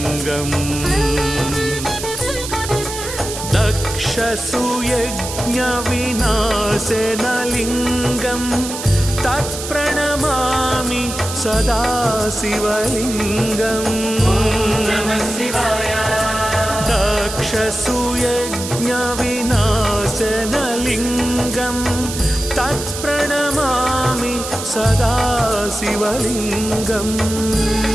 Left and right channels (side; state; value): right; noise; hiss, 8 dB below the sound